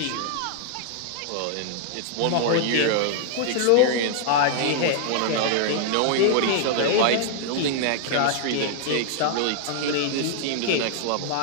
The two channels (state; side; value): different; both; correlation 0.00